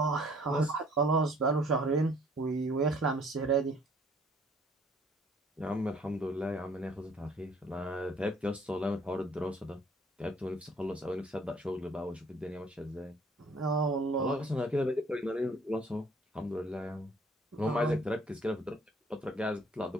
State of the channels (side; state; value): both; normal; correlation 0.58